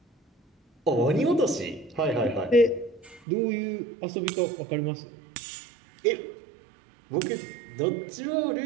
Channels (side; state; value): left; drops out; at 3.2 s